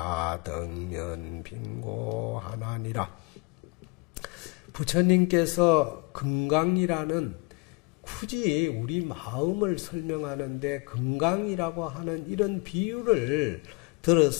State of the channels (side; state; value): right; quieter; 28.7 dB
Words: 덕면빙고하나니라. 부처님께서 금강이라는 굳이 우리 마음을 설명하는데 금강이라고 하는 이런 비유를